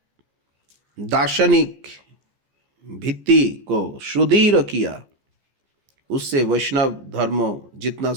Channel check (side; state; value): left; late; 14 ms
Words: दार्शनिक भित्ति को सुदृढ़ किया, उससे वैष्णव धर्म जितना